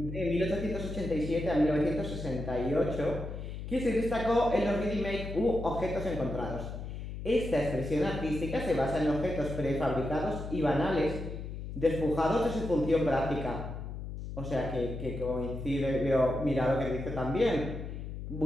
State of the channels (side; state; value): left; noise; hum, 7 dB below the sound